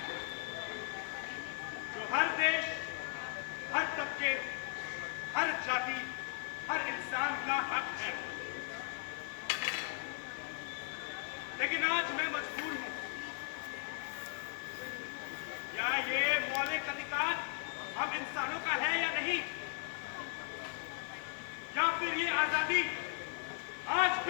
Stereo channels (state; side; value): silent; right; 53 dB below the other